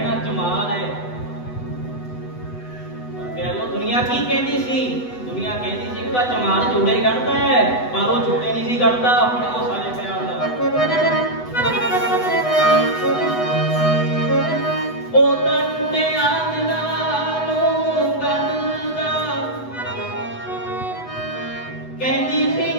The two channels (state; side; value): late; right; 8.0 ms